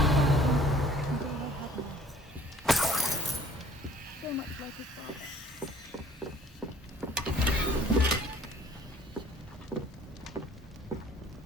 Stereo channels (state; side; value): normal; both; correlation 0.53